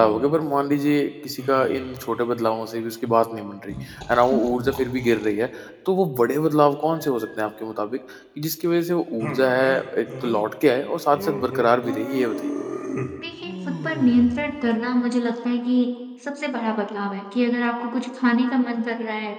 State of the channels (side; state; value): both; identical; correlation 1.00